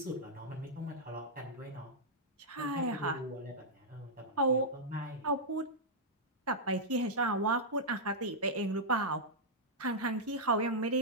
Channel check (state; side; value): normal; both; correlation -0.08